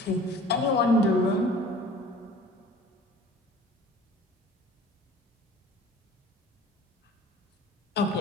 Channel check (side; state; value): both; normal; correlation 0.46